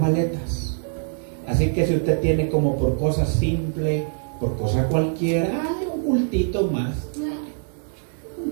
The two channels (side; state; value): left; silent; digital silence